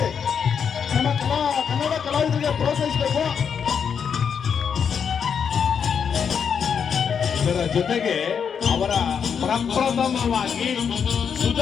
ನಮ್ಮ ಕನ್ನಡ ಕಲಾವಿದರಿಗೆ ಪ್ರೋತ್ಸಾಹಿಸಬೇಕು. ಇದರ ಜೊತೆಗೆ ಅವರ ಪ್ರಪ್ರಥಮವಾಗಿ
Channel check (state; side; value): quieter; right; 7.0 dB